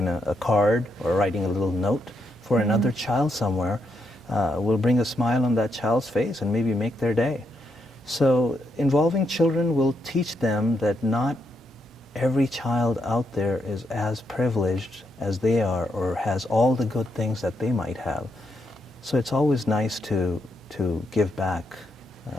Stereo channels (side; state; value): both; normal; correlation 0.80